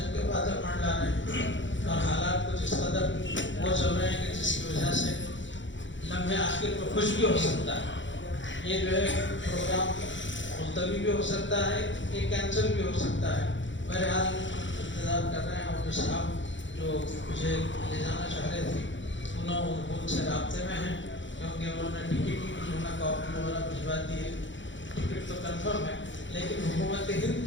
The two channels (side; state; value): right; late; 0.54 ms